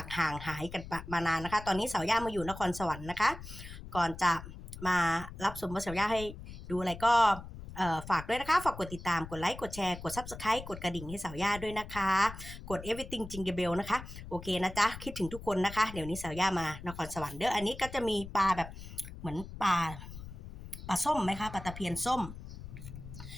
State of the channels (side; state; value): left; noise; rumble, 12 dB below the sound